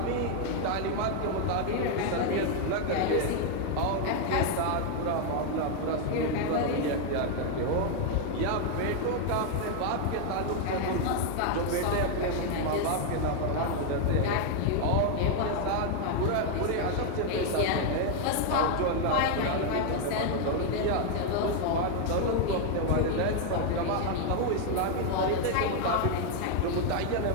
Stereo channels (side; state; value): both; different; correlation 0.01